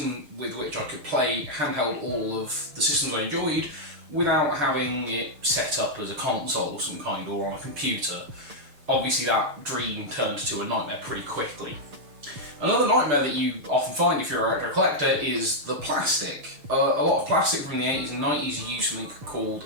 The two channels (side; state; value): left; late; 6.8 ms